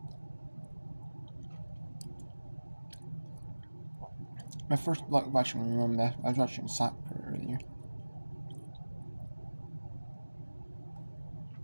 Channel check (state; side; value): inverted; both; correlation -1.00